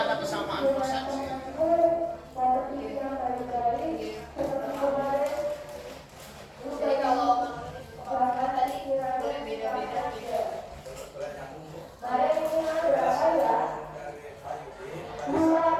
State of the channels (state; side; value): identical; both; correlation 1.00